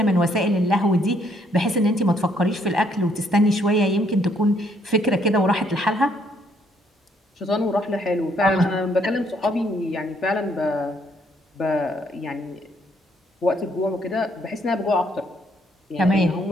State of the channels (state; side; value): normal; both; correlation 0.69